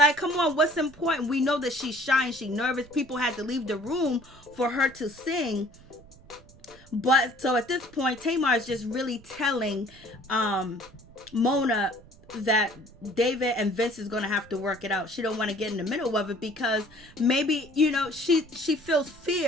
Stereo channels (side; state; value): right; noise; rumble, 24 dB below the sound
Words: Come on, what's important? We know that she's shy and she's nervous. People had to leave the room for her to sing. But so at this point, Tamar is just really telling Mona that David and Vince is going to have to work it out. She don't want to get in the middle of it, because maybe, she feels